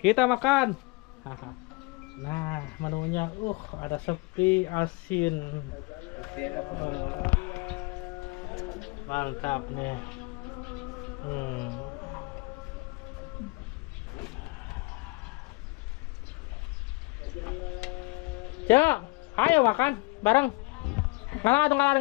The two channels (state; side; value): quieter; right; 27.3 dB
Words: makan. Nah menunya, ada sepi asin. Mantap nih. Cok, ayo makan bareng.